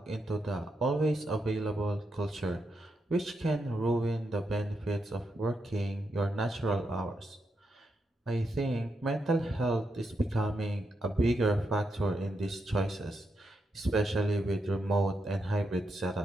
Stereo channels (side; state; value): both; normal; correlation 0.83